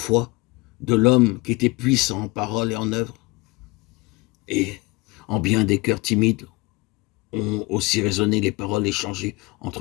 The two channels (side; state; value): right; quieter; 24.1 dB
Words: de l'homme qui était puissant en parole et en œuvre? Et en bien des cœurs timides ont aussi résonné les paroles échangées